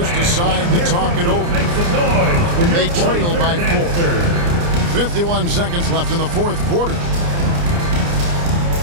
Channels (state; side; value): late; left; 29 ms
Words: decide to talk it over. They trail by 4. 51 seconds left in the fourth quarter.